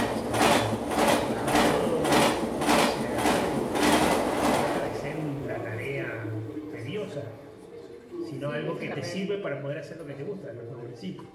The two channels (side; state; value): both; identical; correlation 1.00